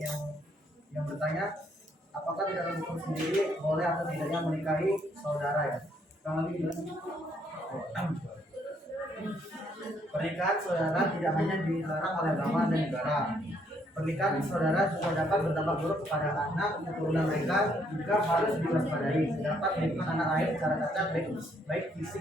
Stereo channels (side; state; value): both; normal; correlation 0.70